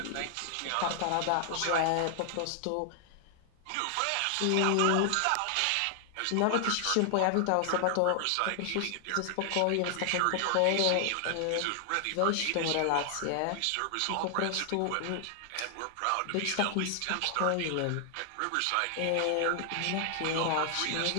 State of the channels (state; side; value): different; both; correlation 0.00